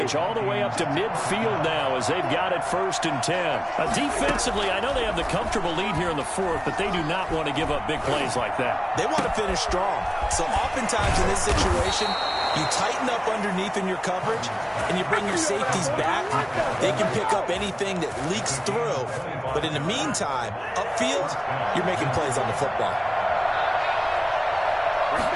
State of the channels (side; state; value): both; identical; correlation 1.00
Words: all the way up to midfield now as they've got it 1st and 10. Defensively, I know they have the comfortable lead here in the fourth, but they do not want to give up big plays like that. They want to finish strong. So oftentimes in this situation, you tighten up underneath in your coverage and you bring your safeties back. They can pick up anything that leaks through. But in the meantime, upfield, you're making plays on the football.